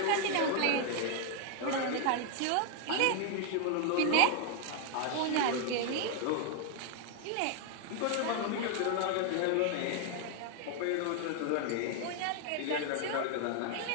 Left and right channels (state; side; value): different; both; correlation 0.00